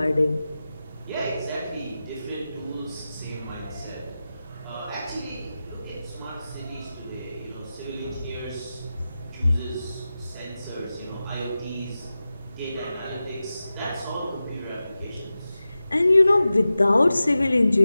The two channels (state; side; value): inverted; both; correlation -0.94